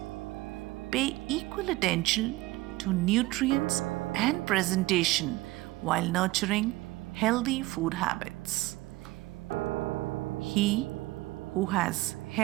Pay equal attention to nutrients and presentation while nurturing healthy food habits. He who has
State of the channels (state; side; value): quieter; left; 19.5 dB